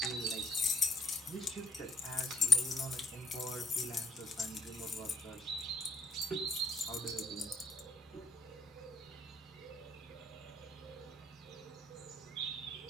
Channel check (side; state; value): both; normal; correlation 0.71